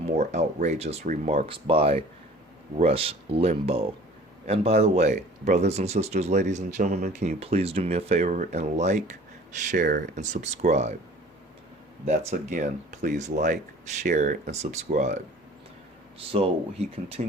outrageous remarks by Rush Limbaugh. And by the way, brothers and sisters, ladies and gentlemen, can you please do me a favor and like, share, and subscribe? That's again, please like, share, and subscribe. So he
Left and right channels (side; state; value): both; normal; correlation 0.47